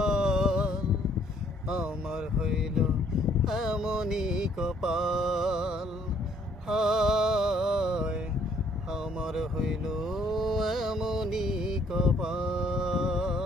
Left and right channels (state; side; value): normal; both; correlation 0.64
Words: আমার হইল এমনই কপাল, হায় আমার হইল এমনই